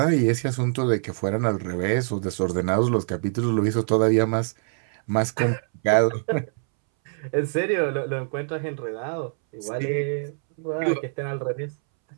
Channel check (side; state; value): left; silent; 62 dB below the other